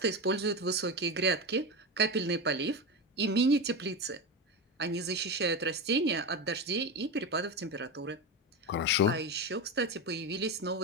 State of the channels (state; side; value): normal; both; correlation 0.19